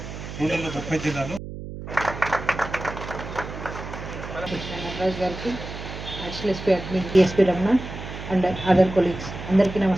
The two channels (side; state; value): right; noise; hum, 10 dB below the sound